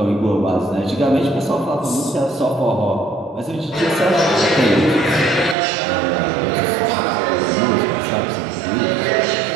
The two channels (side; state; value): left; drops out; at 5.6 s